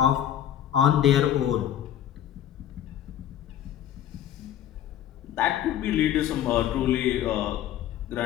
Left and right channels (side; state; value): right; quieter; 11.0 dB